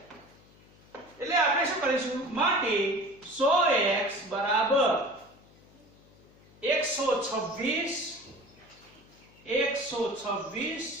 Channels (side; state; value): left; noise; hum, 27 dB below the sound